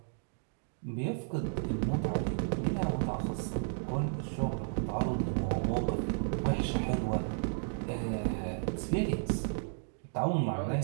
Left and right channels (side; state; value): left; silent; digital silence